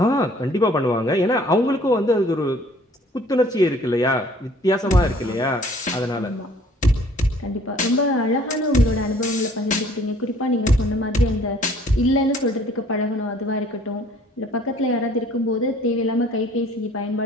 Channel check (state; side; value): normal; both; correlation 0.56